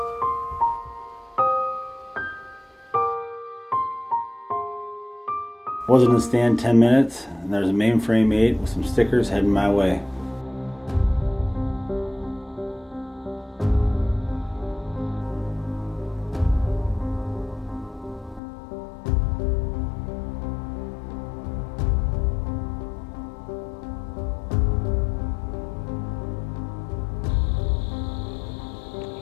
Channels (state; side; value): drops out; right; at 18.4 s